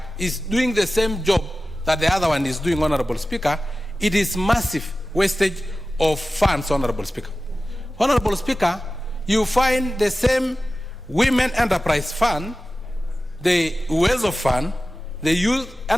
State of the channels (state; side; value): normal; both; correlation 0.95